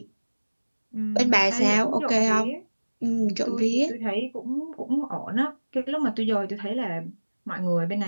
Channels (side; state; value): both; inverted; correlation -1.00